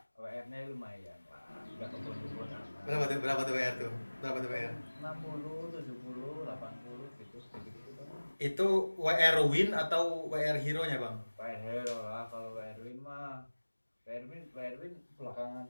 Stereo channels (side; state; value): both; inverted; correlation -1.00